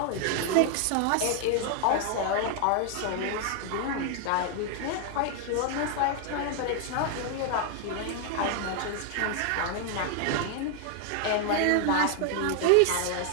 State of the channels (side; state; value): both; different; correlation 0.00